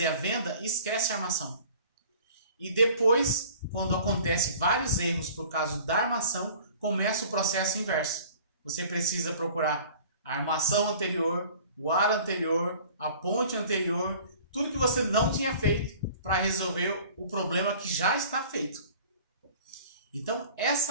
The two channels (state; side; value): inverted; both; correlation -0.48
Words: a venda e esquecem a armação. E depois, quando acontece vários erros por causa da armação, começa o processo inverso. Você precisa procurar a armação anterior, o ar anterior, a ponte anterior, tudo que você não tinha feito para resolver o problema que já está feito. Então,